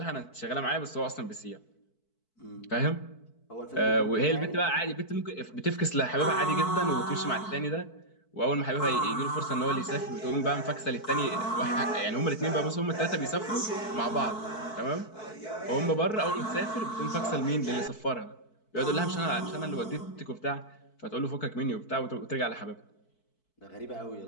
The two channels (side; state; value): right; late; 4.6 ms